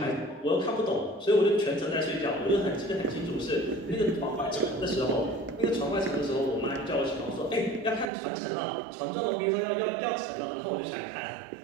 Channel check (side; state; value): left; drops out; at 8.1 s